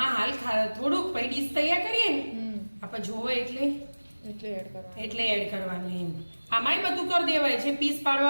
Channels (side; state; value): both; inverted; correlation -1.00